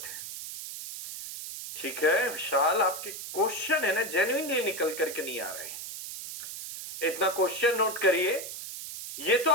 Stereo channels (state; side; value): noise; right; hiss, 9 dB below the sound